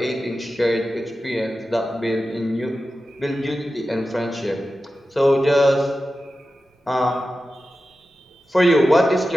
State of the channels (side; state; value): both; normal; correlation 0.93